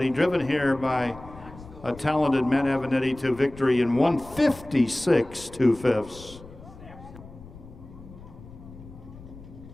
driven here by a talented Matt Avanetti to victory in 156 2/5.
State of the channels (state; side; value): noise; left; rumble, 18 dB below the sound